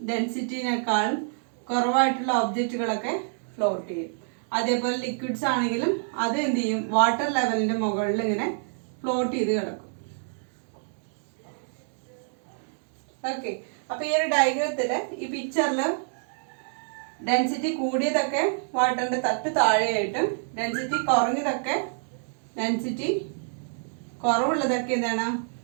കുറവായിട്ടുള്ള ഒബ്ജക്റ്റുകളൊക്കെ ഫ്ലോട്ട് ചെയ്യും. അതേപോലെ ലിക്വിഡ്സ് ആണെങ്കിലും അത് എന്ത് ചെയ്യും? വാട്ടർ ലെവലിന്റെ മുകളിൽ ഇങ്ങനെ ഫ്ലോട്ട് ചെയ്ത് കിടക്കും. ഓക്കെ, അപ്പൊ ഈ ഒരു ഡയഗ്രത്തില് ഈ പിക്ചറില് ഡെൻസിറ്റി കൂടിയതൊക്കെ വാട്ടറിന്റെ തട്ട് താഴെയായിട്ടും ഡെൻസിറ്റി കുറഞ്ഞതൊക്കെ ഡെൻസിറ്റി കുറവുള്ളതൊക്കെ എന്താണ്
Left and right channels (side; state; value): left; silent; digital silence